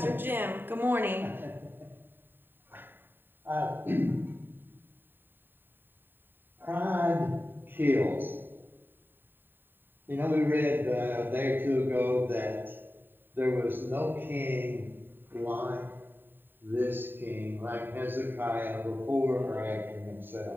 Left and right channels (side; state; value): left; late; 0.095 ms